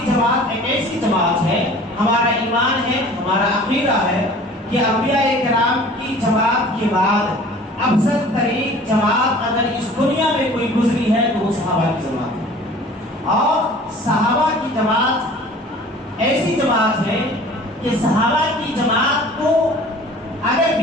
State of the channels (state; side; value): normal; both; correlation 0.47